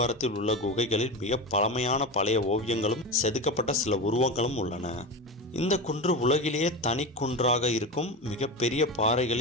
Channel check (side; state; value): both; normal; correlation 0.22